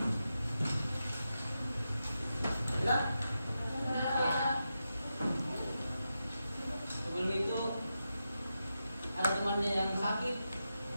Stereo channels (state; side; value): inverted; both; correlation -0.89